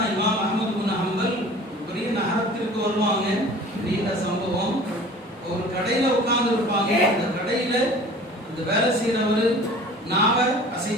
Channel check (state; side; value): normal; both; correlation 0.44